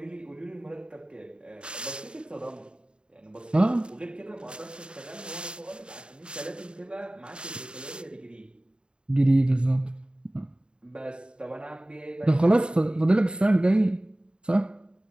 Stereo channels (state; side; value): late; left; 0.051 ms